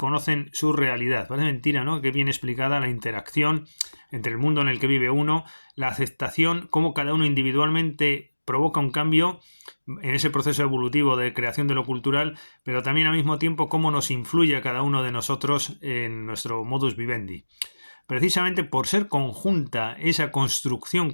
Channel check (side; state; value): both; inverted; correlation -1.00